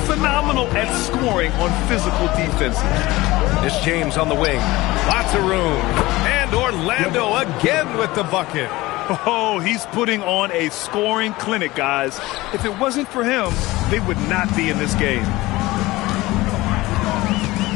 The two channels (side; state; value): right; quieter; 19.5 dB